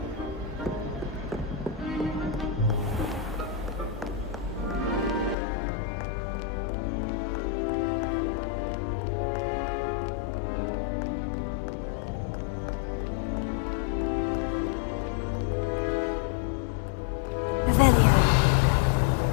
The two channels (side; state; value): right; drops out; at 5.4 s